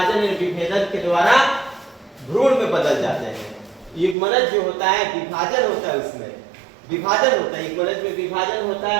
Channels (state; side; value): drops out; left; at 4.2 s